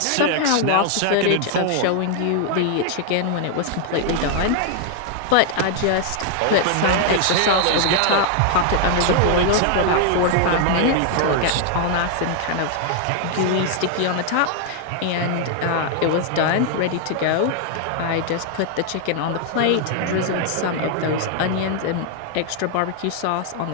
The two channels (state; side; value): different; both; correlation 0.00